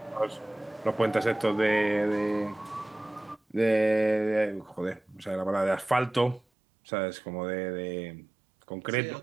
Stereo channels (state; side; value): drops out; left; at 6.4 s